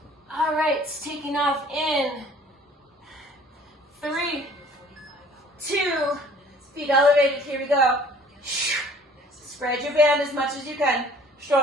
All right, taking off in 3, 2, feet elevated, here we go. Spread your band as much as you can.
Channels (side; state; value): both; normal; correlation 0.53